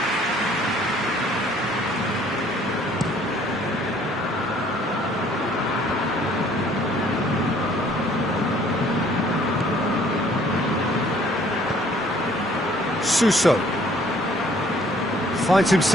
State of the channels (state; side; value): normal; both; correlation 0.59